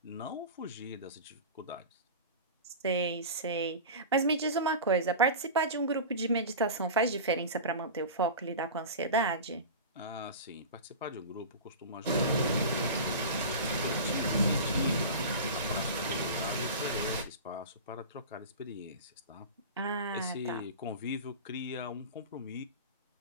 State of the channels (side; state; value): both; inverted; correlation -0.30